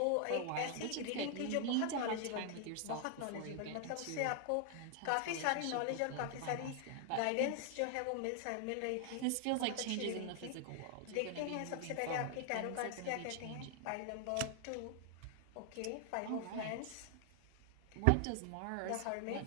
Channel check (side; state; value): both; different; correlation 0.00